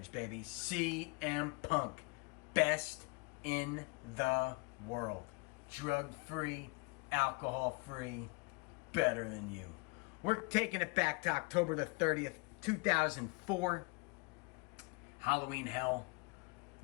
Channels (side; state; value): right; quieter; 29.4 dB